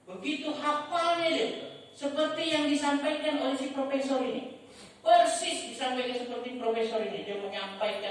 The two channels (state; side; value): identical; both; correlation 1.00